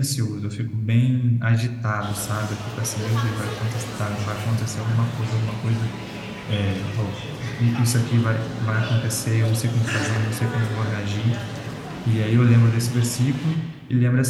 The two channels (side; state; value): both; identical; correlation 1.00